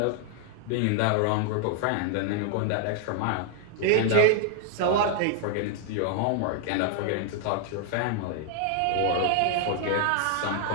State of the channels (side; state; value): both; different; correlation 0.00